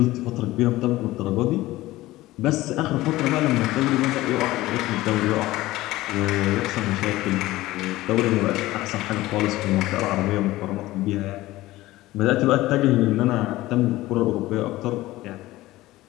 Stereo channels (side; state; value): right; quieter; 17.5 dB